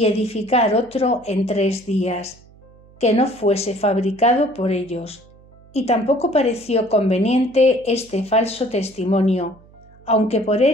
edificar otro en 3 días, que no fuese fabricado por ellos, y tampoco pareció conveniente este falso testimonio, aunque por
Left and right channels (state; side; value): noise; right; hum, 26 dB below the sound